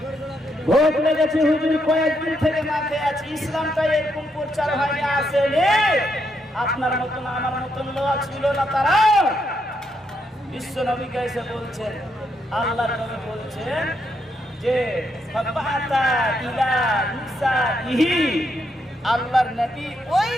ভোগ লেগেছে হুজুর, কয়েকদিন থেকে না খেয়ে আছি, ইসলামটা এরকম প্রচার হয়নি, আসেনি, আপনার মতন আমার মতন লোক ছিল না তারা। বিশ্ব নবীকে এসে বলছেন, আল্লাহর নবী বলছেন যে ফাবাতা ইলা নিসাইহি, আল্লাহর নবী ওই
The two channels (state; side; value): normal; both; correlation 0.78